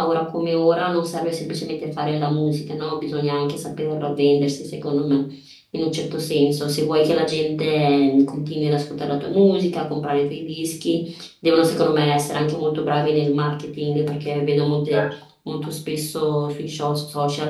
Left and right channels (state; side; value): identical; both; correlation 1.00